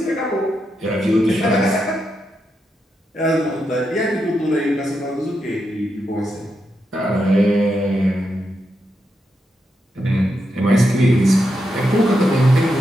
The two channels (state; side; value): normal; both; correlation 0.84